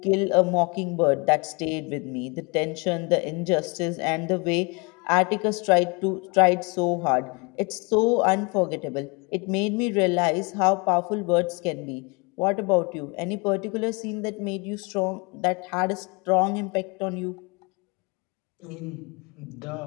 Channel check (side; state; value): right; quieter; 29.7 dB